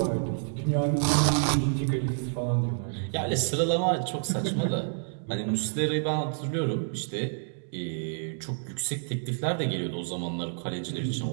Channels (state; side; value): silent; left; digital silence